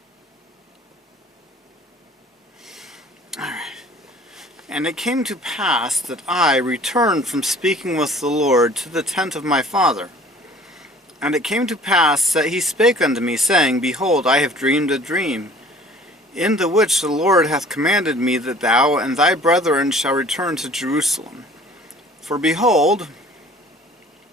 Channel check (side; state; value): both; normal; correlation 0.50